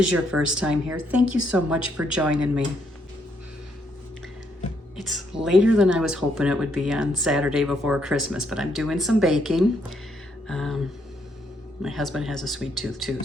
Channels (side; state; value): both; normal; correlation 0.73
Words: your first time here, thank you so much for joining me. It's later than I was hoping it would be on Saturday before Christmas, but I'm doing some baking. My husband has a sweet tooth too,